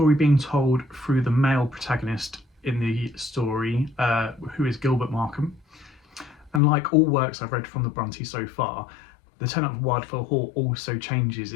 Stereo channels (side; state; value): right; drops out; at 6.6 s